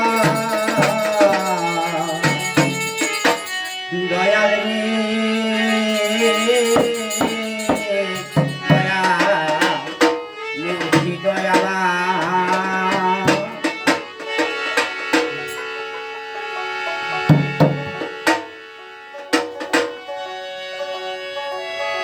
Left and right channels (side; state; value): both; identical; correlation 1.00